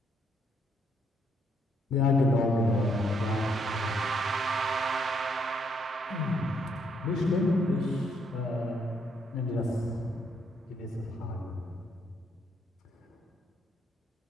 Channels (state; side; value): normal; both; correlation 0.72